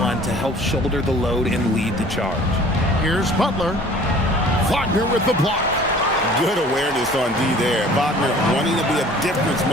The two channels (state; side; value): normal; both; correlation 0.49